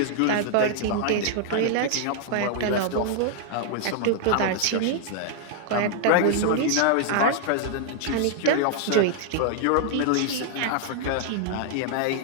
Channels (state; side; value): different; both; correlation 0.00